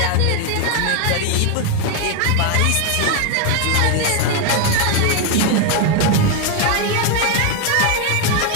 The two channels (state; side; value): different; both; correlation 0.01